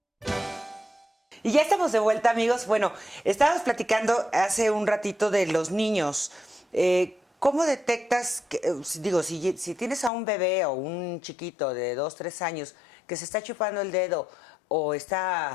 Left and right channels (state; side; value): drops out; right; at 10.1 s